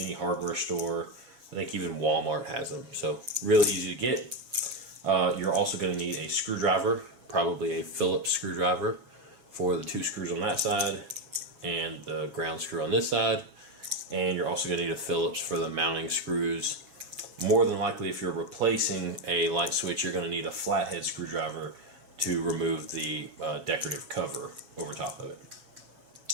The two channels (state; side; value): late; left; 7.2 ms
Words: hardware store. I think even Walmart has them, so really easy to get. You're also going to need a screwdriver, probably a Phillips screwdriver for the 2 screws on that side and the ground screw on this side. And you're also going to need a Phillips for the mounting screws. More than likely, if you're replacing a light switch, you're going to need a flathead screwdriver to remove the decorative cover over top of it.